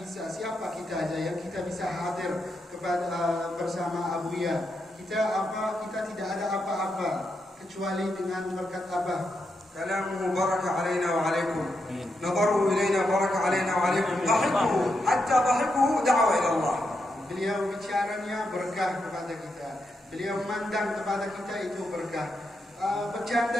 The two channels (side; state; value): both; normal; correlation 0.83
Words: siapa kita aja yang kita bisa hadir kepada bersama Abuya? Kita tidak ada apa-apa kecuali dengan berkat Abah. كلامه بركة علينا وعليكم، نظره إلينا بركة علينا وعليكم، ضحكه حتى ضحكه دعوة إلى الله. Beliau bicaranya berkah kepada kita, beliau mandang kepada kita itu berkah,